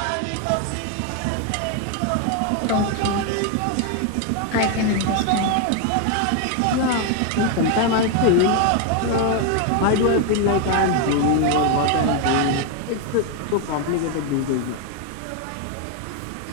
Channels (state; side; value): different; both; correlation 0.01